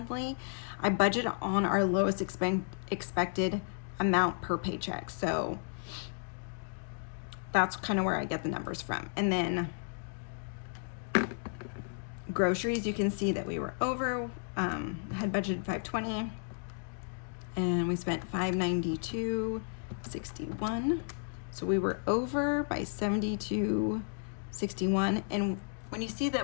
I budget on our lowest expected amount per paycheck. So that's kind of where I get the numbers from. And then groceries, you can see that we were over, had budgeted $520 and we spent $592.61. So we were over by $72.61. And when you see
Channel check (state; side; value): silent; right; digital silence